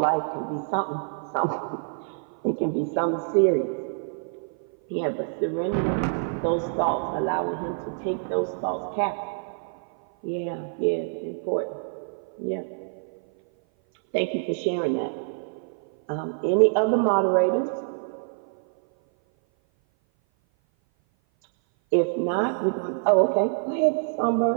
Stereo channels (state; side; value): silent; left; 56 dB below the other